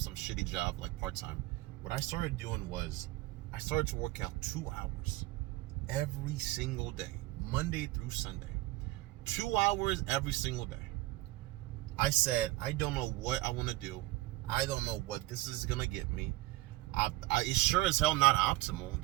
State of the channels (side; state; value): left; quieter; 18.8 dB